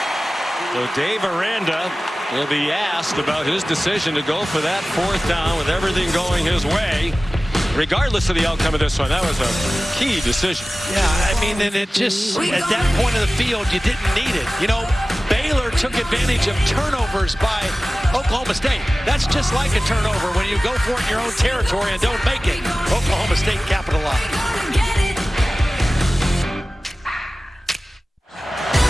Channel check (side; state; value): both; normal; correlation 0.96